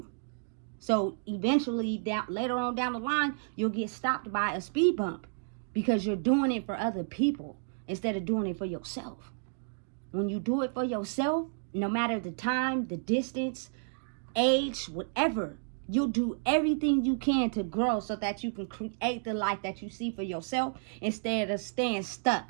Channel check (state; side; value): silent; left; digital silence